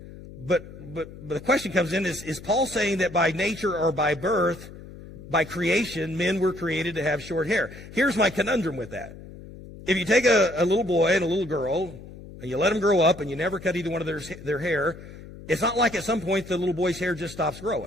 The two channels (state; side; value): noise; left; hum, 16 dB below the sound